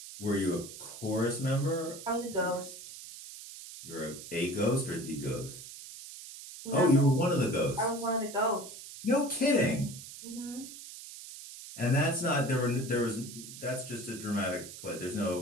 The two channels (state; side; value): noise; right; hiss, 13 dB below the sound